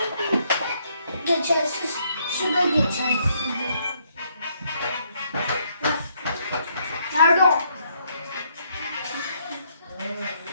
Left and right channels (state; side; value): inverted; both; correlation -0.71